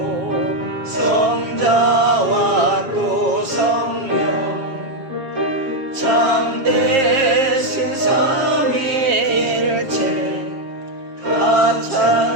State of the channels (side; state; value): left; late; 7.5 ms